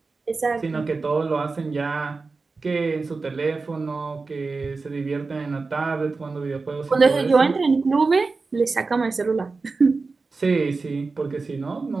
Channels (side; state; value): left; quieter; 4.1 dB